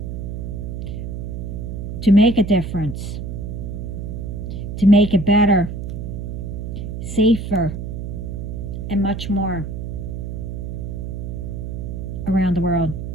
to make a difference, to make it better, safer, and much more around the world.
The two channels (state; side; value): noise; right; hum, 5 dB below the sound